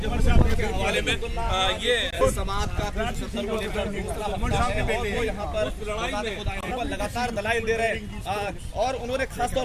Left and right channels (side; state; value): both; identical; correlation 1.00